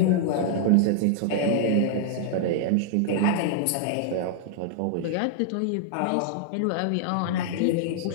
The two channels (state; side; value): different; both; correlation -0.01